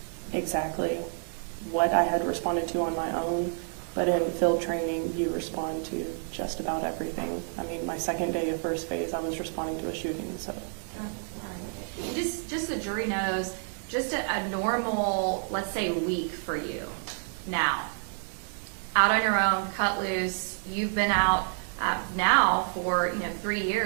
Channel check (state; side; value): silent; left; 58 dB below the other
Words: exactly what I had responded to on my own, but in field training, you respond to just about everything. I mean, my second day of first phase, I was responding to a shooting, so. Right. Just the jury knows, just a normal, let's say, week for you now. Out on your own, cut loose, you've been out now for 3